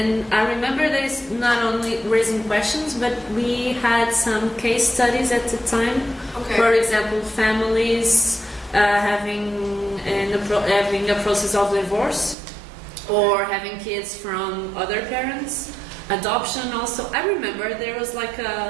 I remember that it's not only raising questions, but we had some case studies at the time. Okay. For example, families having a process of divorce, or having kids from other parents, adoption also. I remember there was like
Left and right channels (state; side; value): drops out; left; at 12.4 s